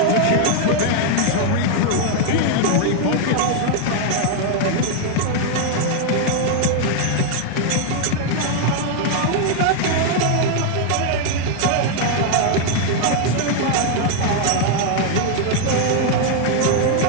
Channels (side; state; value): both; different; correlation 0.00